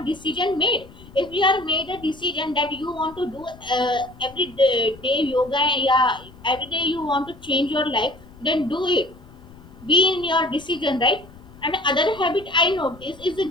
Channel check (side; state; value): left; noise; rumble, 21 dB below the sound